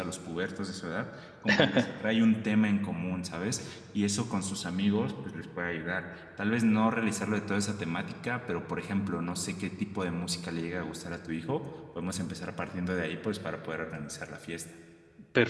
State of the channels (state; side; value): identical; both; correlation 1.00